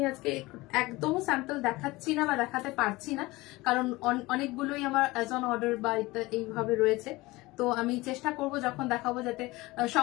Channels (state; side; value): quieter; right; 20.9 dB